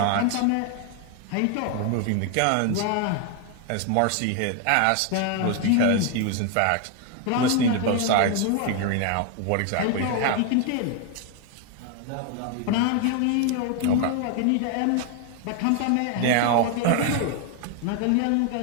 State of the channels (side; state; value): both; different; correlation 0.01